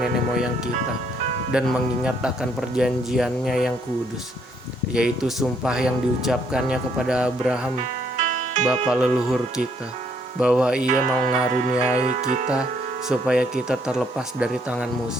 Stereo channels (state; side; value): normal; both; correlation 0.69